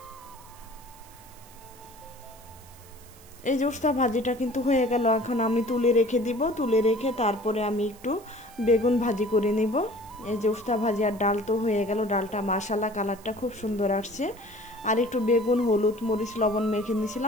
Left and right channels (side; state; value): right; noise; hiss, 23 dB below the sound